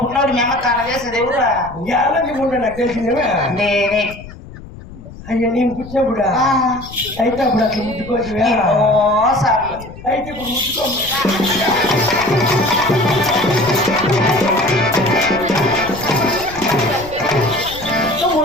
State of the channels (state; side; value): noise; left; rumble, 16 dB below the sound